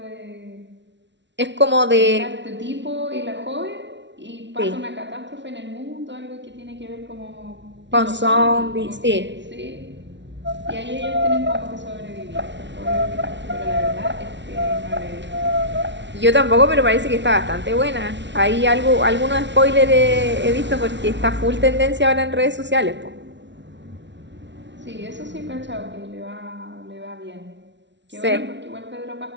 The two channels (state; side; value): late; left; 0.52 ms